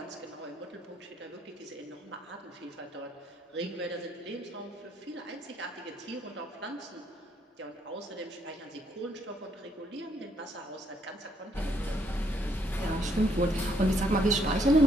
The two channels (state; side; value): normal; both; correlation 0.70